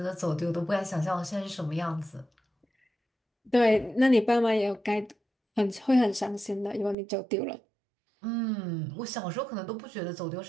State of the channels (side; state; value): left; drops out; at 7.0 s